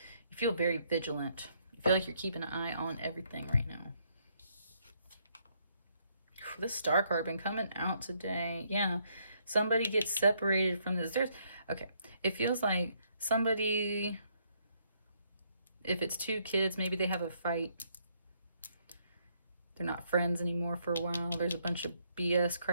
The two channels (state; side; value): inverted; both; correlation -0.71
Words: you feel very vigilant. You feel like you're keeping an eye on everything right now. This Star card been coming out today. Yeah. Somebody gets separated from this. Okay. It feels like somebody... If it's two kids, maybe they have a fight. They're not friends anymore for a while. There's a bunch of BS